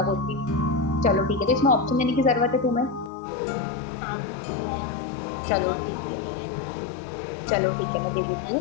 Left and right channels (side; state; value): right; drops out; at 3.1 s